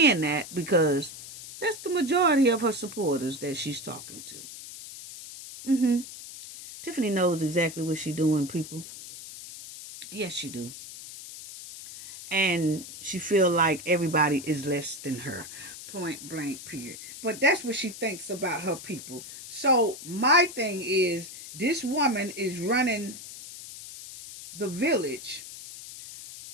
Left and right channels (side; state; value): left; noise; hiss, 13 dB below the sound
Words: that because that's the majority of her supporters that she's talking to. Tiffany knows exactly what she's doing, people. Yes, she do. And she feel like everybody is less than her. Point blank, period. But that's what she thinks about her people. So my thing is, this woman is running the village